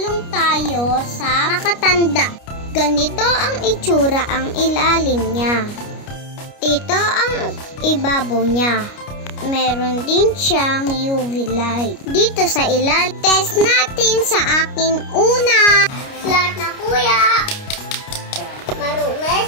tayo sa makatanda. Ganito ang itsura ang ilalim niya. Ito ang ibabaw niya. Meron din siyang UV light. Dito sa ilalim, test natin sa akin una. Flat na kuya. Marunong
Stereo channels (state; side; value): late; right; 29 ms